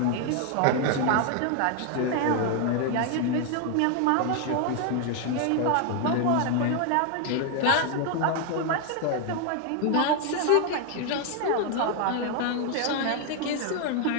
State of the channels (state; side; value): different; both; correlation 0.01